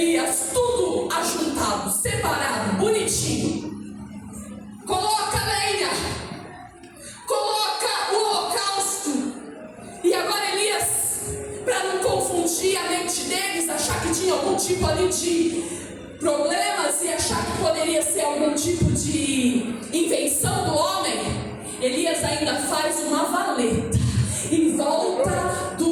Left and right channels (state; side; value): identical; both; correlation 1.00